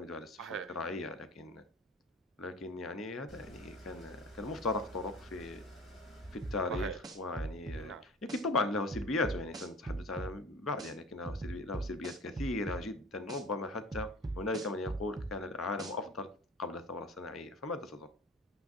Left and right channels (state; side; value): normal; both; correlation 0.42